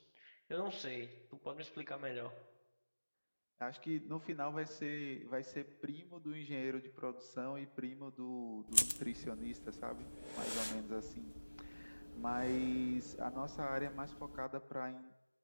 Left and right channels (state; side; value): inverted; both; correlation -1.00